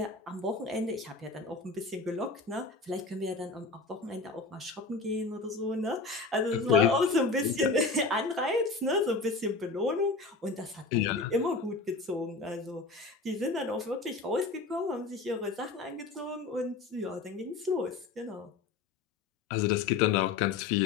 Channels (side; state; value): right; quieter; 4.0 dB